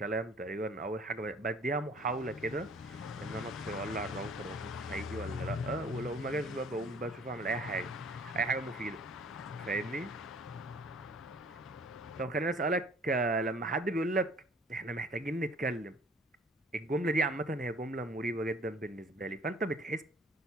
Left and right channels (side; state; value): both; normal; correlation 0.53